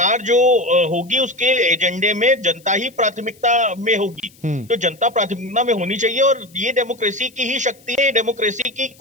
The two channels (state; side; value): noise; left; hiss, 28 dB below the sound